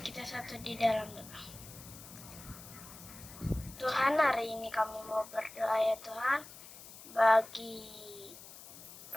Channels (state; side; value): noise; left; hiss, 16 dB below the sound